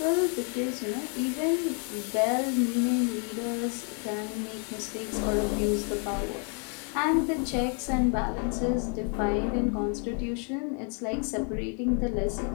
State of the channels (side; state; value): right; quieter; 39.8 dB